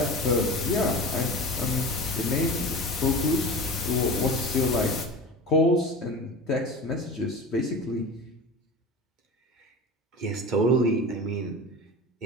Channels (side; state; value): both; normal; correlation 0.32